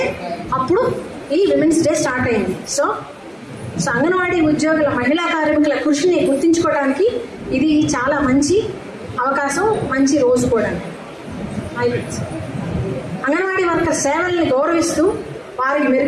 అప్పుడు ఈ విమెన్స్ డే స్టార్ట్ అయింది. సో అంగన్వాడీ ఉద్యోగుల, మహిళా కార్మికుల కృషిని గుర్తించుకోవడానికి ఇది చాలా మంచి అవకాశం, మంచి రోజు కూడా. అంగన్వాడీ వర్కర్ సేవల్ని గౌరవిస్తూ వారికి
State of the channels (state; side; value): identical; both; correlation 1.00